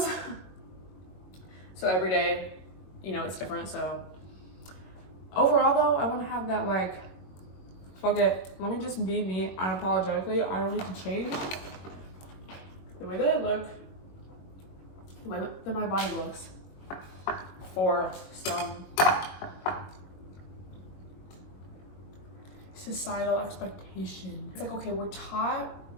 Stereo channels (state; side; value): late; right; 22 ms